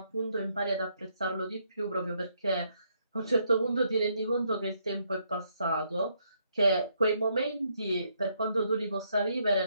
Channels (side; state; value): both; inverted; correlation -0.74